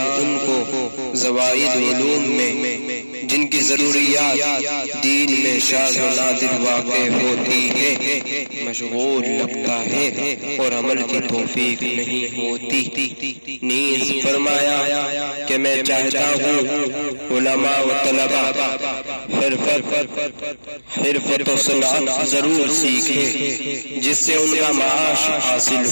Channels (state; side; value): inverted; both; correlation -1.00